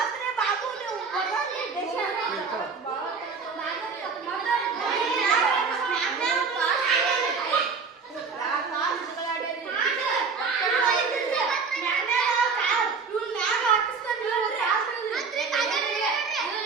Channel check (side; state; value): left; quieter; 5.1 dB